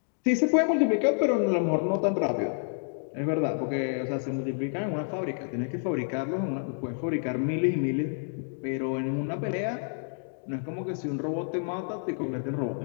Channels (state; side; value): silent; right; digital silence